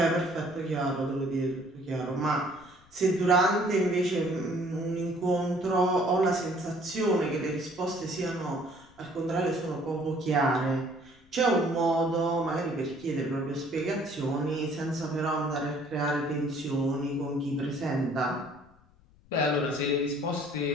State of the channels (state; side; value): noise; left; rumble, 29 dB below the sound